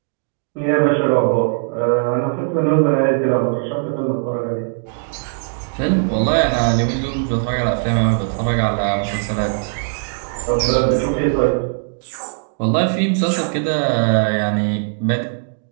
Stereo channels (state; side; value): silent; left; digital silence